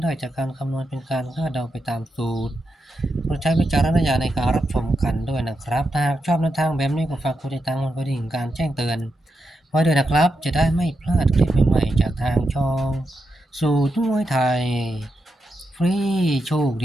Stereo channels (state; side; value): normal; both; correlation 0.86